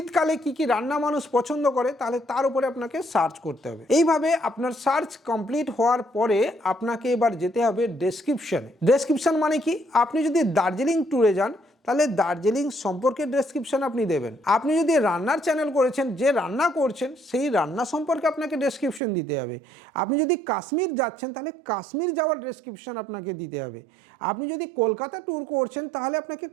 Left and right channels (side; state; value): left; drops out; at 19.0 s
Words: কি কি রান্না মানুষ পছন্দ করে, তাহলে তার উপরে আপনাকে সার্চ করতে হবে। এইভাবে আপনার সার্চ কমপ্লিট হওয়ার পরে আপনাকে এবার যেতে হবে ডেসক্রিপশনে। ডেসক্রিপশন মানে কি, আপনি যদি দার্জিলিং ট্যুরে যান তাহলে দার্জিলিং সম্পর্কে ডেসক্রিপশন আপনি দেবেন। আপনি যদি রান্নার চ্যানেল করেছেন, যে রান্না করছেন সেই রান্না সম্পর্কে আপনাকে ডেসক্রিপশন দিতে হবে। আপনি যদি কাশ্মীর যাচ্ছেন তাহলে কাশ্মীর যাওয়ার ডেসক্রিপশন আপনাকে দিতে হবে। আপনি যদি কলকাতা ট্যুর করছেন তাহলে আপনাকে